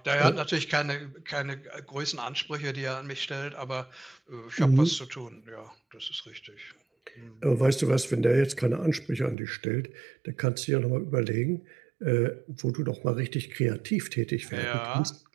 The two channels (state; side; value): drops out; left; at 9.3 s